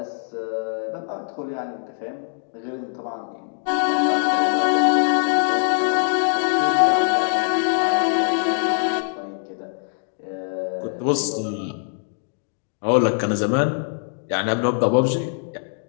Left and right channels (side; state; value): right; silent; digital silence